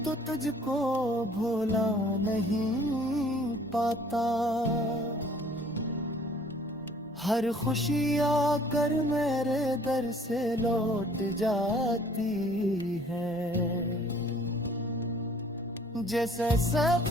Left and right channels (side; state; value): both; normal; correlation 0.56